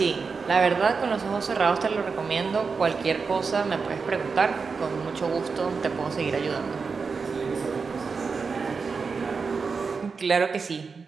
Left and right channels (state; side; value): quieter; left; 5.0 dB